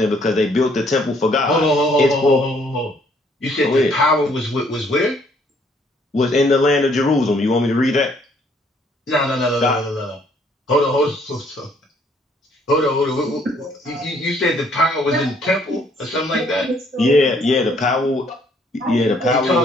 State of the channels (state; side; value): normal; both; correlation 0.64